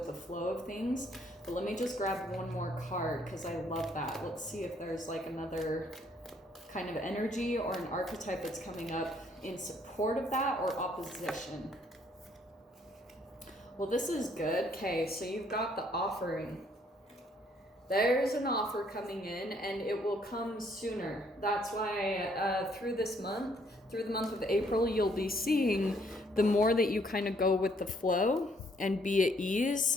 the flow of things. But let me just grab one more card because I love that. Let's see if there's like another kind of energy or an archetype that's coming up in support of that or opposition. Well, this is good. Okay, so you've got the offering. There's an offer coming in and it will come sooner. That's why through the month of April, you'll be seeing the more that you kind of go with the flow and be at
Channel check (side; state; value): both; normal; correlation 0.66